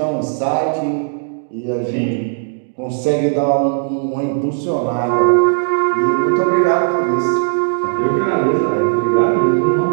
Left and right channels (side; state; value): left; silent; digital silence